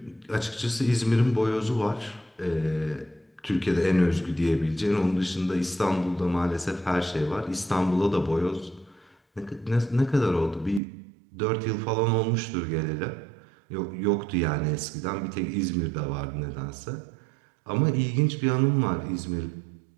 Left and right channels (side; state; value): left; drops out; at 10.8 s